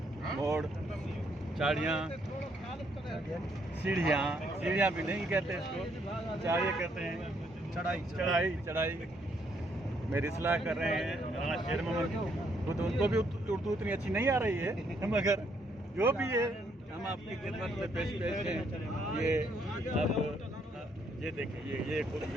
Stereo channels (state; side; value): normal; both; correlation 0.71